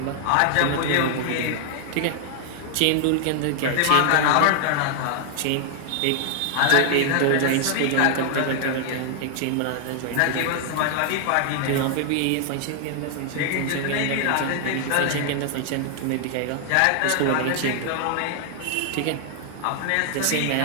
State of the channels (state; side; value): different; both; correlation 0.00